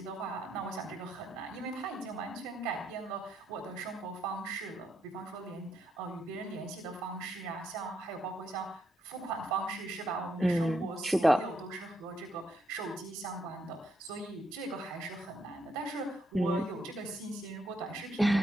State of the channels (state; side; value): normal; both; correlation 0.77